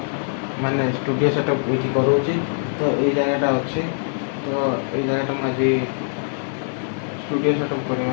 ମାନେ ଷ୍ଟୁଡ଼ିଓ ସେଟଅପ୍ ଏଇଠି କରୁଛି। ତ ଏଇ ଜାଗାଟା ଅଛି, ତ ଏଇ ଜାଗାଟା ମୁଁ ଆଜି ଷ୍ଟୁଡ଼ିଓ ସେଟଅପ୍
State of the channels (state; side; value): silent; right; digital silence